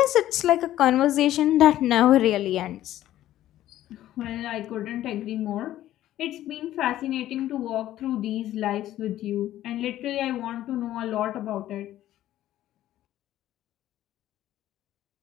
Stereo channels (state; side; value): quieter; right; 13.4 dB